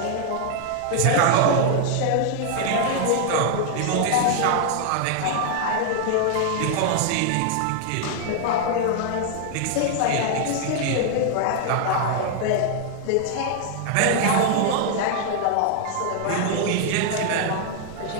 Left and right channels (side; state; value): both; different; correlation 0.00